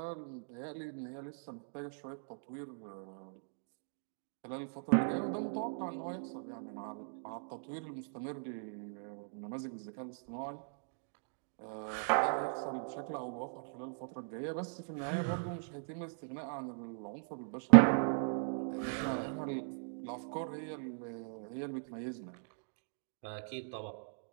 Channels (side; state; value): left; silent; digital silence